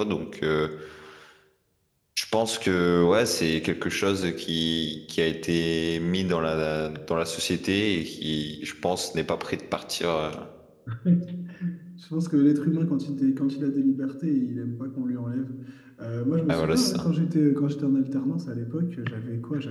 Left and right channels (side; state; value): both; identical; correlation 1.00